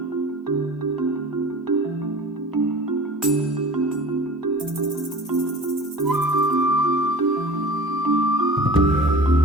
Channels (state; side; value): normal; both; correlation 0.39